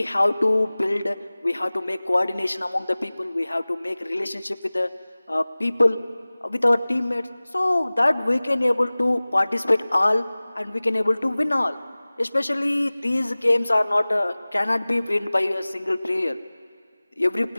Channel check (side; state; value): both; inverted; correlation -0.99